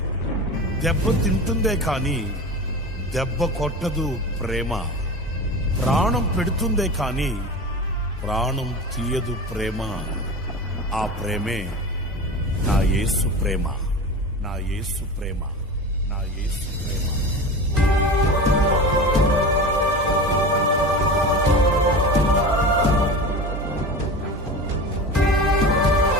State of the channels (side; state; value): both; normal; correlation 0.30